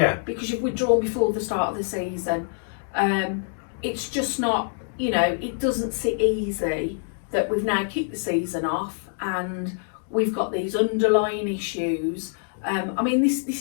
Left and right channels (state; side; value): silent; right; 62 dB below the other